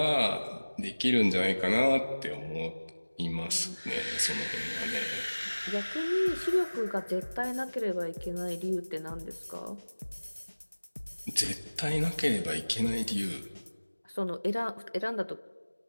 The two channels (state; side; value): inverted; both; correlation -1.00